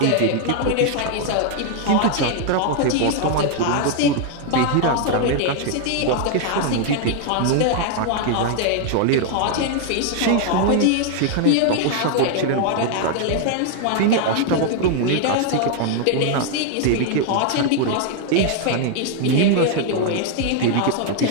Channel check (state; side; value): different; both; correlation 0.00